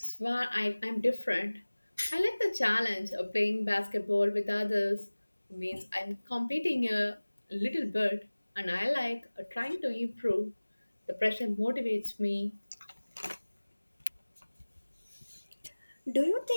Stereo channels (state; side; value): inverted; both; correlation -1.00